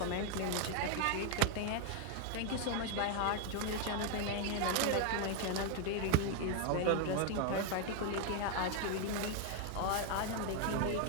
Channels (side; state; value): both; different; correlation 0.00